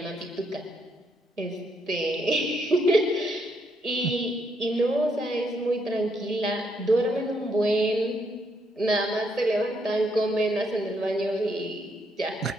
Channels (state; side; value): normal; both; correlation 0.75